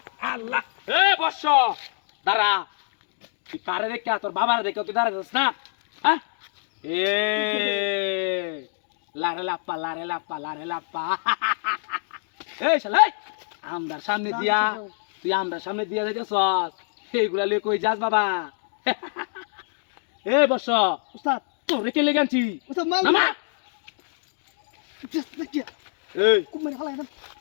আল্লাহ এ বর্ষ দাঁড়া তুই কারে দেখে তোর বাবার দেখে তুই দাঁড়াইছিস না হ্যাঁ এ লারে লাপ্পা এই শালাই আমদার সামনে দিয়া তুই আমদার সামনে দিয়া যাইতেছস এইগুলা লই কই যাস বাবা এ বর্ষ উস্তাদ তোরে কে লেগানছি উস্তাদ মাল নামা জাস্ট দেখি এই খুব মেরে হালাই না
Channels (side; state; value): right; silent; digital silence